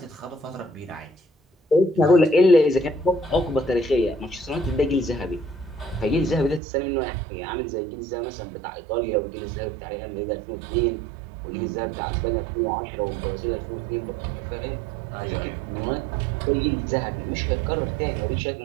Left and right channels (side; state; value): left; drops out; at 6.6 s